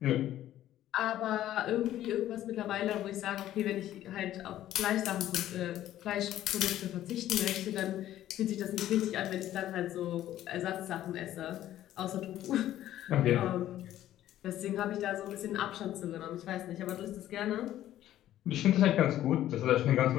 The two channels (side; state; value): right; quieter; 12.9 dB